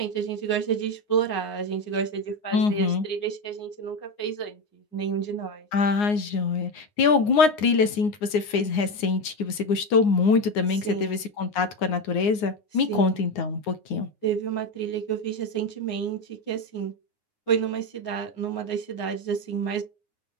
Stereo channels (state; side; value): late; right; 9.6 ms